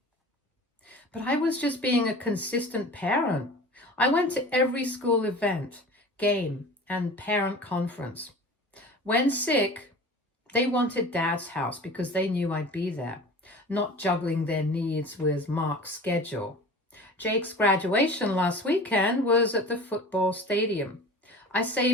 But I was just being a consistent parent. I went to every school event, game, and parent conference. When sick, they wanted Dad's house because they knew I'd be there, not juggling their needs with Mark's schedule. Jake's graduation last weekend was at the football stadium. I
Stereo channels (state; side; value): normal; both; correlation 0.38